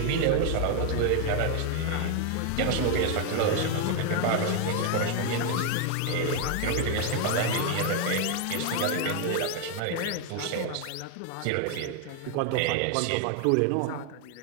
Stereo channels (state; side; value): different; both; correlation 0.00